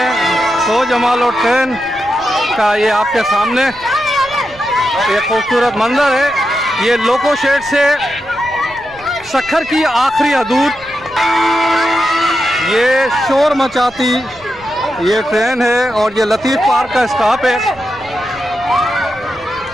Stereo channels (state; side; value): noise; right; rumble, 24 dB below the sound